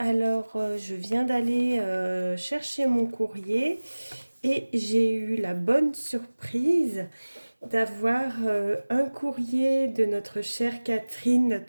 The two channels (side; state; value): both; inverted; correlation -1.00